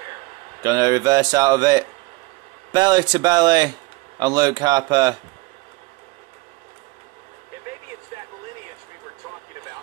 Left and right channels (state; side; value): quieter; left; 22.7 dB